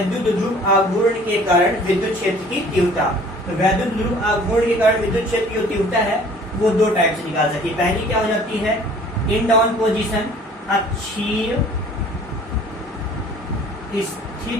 ध्रुव आघूर्ण के कारण विद्युत क्षेत्र की तीव्रता, तो विद्युत ध्रुव आघूर्ण के कारण विद्युत क्षेत्र की जो तीव्रता है वो 2 टाइप से निकाल सकती है। पहली क्या हो जाती है, इन डाउन पोजिशन, अक्षीय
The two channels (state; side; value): normal; both; correlation 0.51